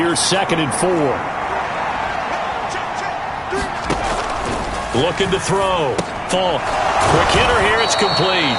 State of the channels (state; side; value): identical; both; correlation 1.00